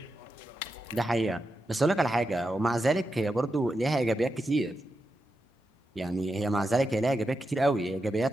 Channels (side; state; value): both; normal; correlation 0.88